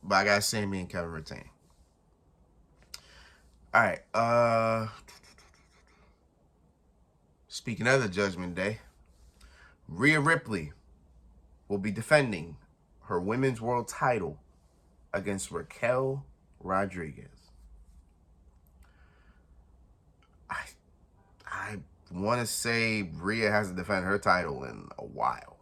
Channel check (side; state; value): both; identical; correlation 1.00